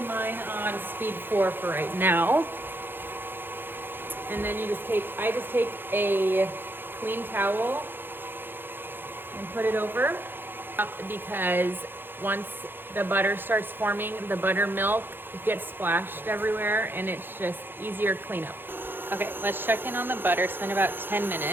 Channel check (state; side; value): late; left; 0.10 ms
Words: mine on speed 4 for right now. And then I just take a clean towel and put it over, because once the butter starts forming, the buttermilk gets splashed everywhere and it's just easier cleanup. Okay, let's check in on the butter. It's been about 10